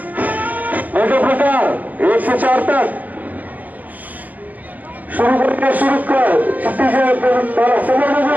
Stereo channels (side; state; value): left; late; 0.081 ms